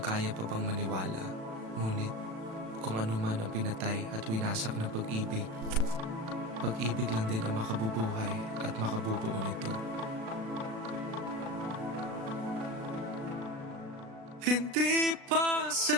kaya pa bang maniwala. Ngunit kung ano man ang pinatay at winasak ng pag-ibig, pag-ibig lang din ang makabubuhay at makabubuo nito. Hindi pa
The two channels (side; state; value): left; late; 36 ms